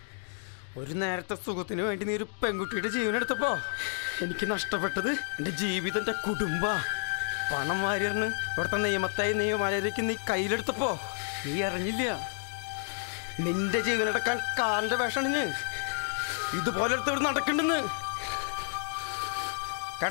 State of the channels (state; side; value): silent; right; digital silence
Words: ഒരു നേരത്തെ സുഖത്തിന് വേണ്ടി നീ ഒരു പെൺകുട്ടിയുടെ ജീവനെടുത്തപ്പോ എനിക്ക് നഷ്ടപ്പെട്ടത് എൻ്റെ ജീവിതം, എൻ്റെ കുടുംബ പണം വാരിയറിന് ഇവിടുത്തെ നിയമമര്യാദയ്ക്ക് നീ കയ്യിലെടുത്തപ്പോ നീ അറിഞ്ഞില്ല. നിന്റെ ജീവനെടുക്കാൻ കാലിൻ്റെ വേഷണിഞ്ഞ് ഇതുപോലെ എടുത്ത് നടക്കണ്ടെന്ന്